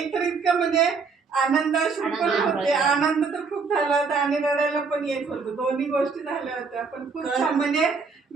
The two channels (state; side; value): quieter; left; 4.9 dB